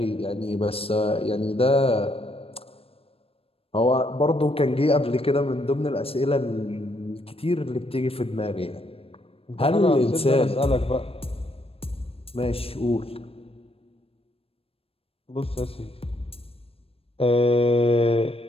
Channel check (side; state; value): right; late; 0.28 ms